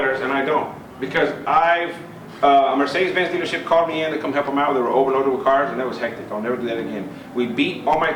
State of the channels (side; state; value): both; identical; correlation 1.00